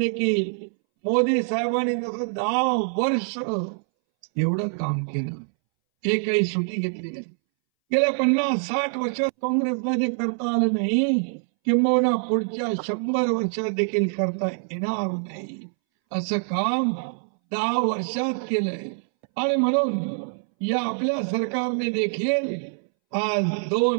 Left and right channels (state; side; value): silent; left; 62 dB below the other